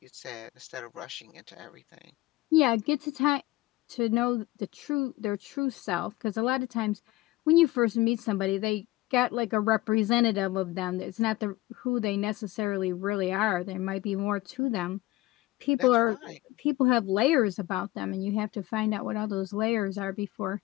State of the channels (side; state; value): right; quieter; 18.6 dB